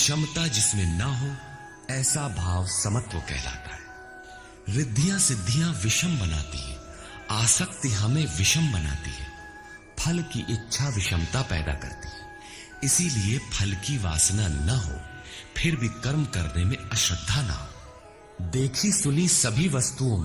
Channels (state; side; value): identical; both; correlation 1.00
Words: जिसमें ना हो, ऐसा भाव समत्व कहलाता है। रिद्धियां सिद्धियां विषम बनाती है, आसक्ति हमें विषम बनाती है, फल की इच्छा विषमता पैदा करती है। इसीलिए फल की वासना न हो, फिर भी कर्म करने में अश्रद्धा ना हो। देखी सुनी सभी वस्तुओं